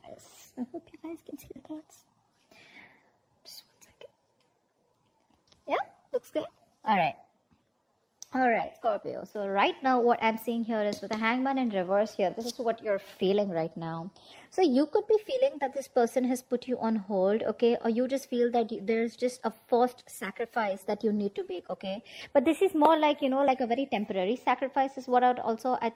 this. I hope you guys can see the cards. Just 1 second. Yeah, looks good. All right. All right, Scorpio. So right now what I'm seeing here is with the Hangman in reverse here, this is what you're feeling right now. So you could be feeling that this person has put you on hold, okay? Or you just feel that there's just a forced sacrifice that you need to make, okay? But this is more like, like a very temporary sacrifice is what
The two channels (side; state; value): both; identical; correlation 1.00